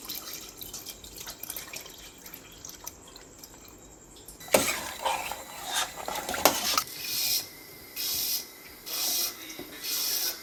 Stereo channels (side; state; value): both; identical; correlation 1.00